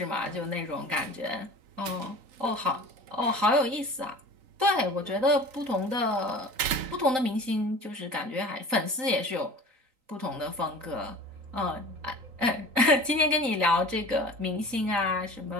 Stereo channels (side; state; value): left; late; 3.9 ms